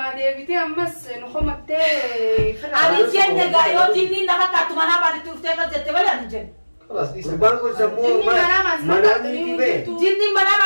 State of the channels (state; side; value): inverted; both; correlation -1.00